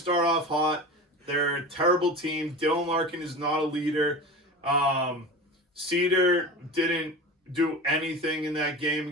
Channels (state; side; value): normal; both; correlation 0.31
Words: off hot. They're a terrible team. Dylan Larkin is not a leader. Cedar didn't do anything in that game